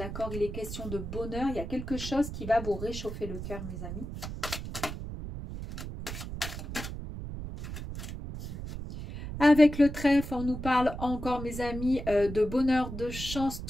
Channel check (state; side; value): noise; right; rumble, 8 dB below the sound